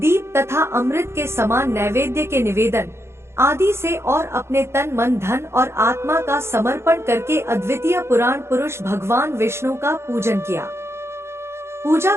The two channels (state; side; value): late; left; 0.13 ms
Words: तथा अमृत के समान नैवेद्य के निवेदन आदि से और अपने तन, मन, धन और आत्मा का समर्पण करके अद्वितीय पुराण पुरुष भगवान विष्णु का पूजन किया। पूजा